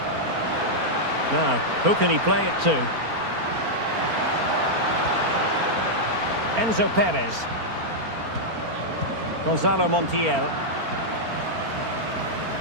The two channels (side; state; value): left; late; 4.4 ms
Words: Now, who can he play it to? Enzo Perez. Gonzalo Montiel.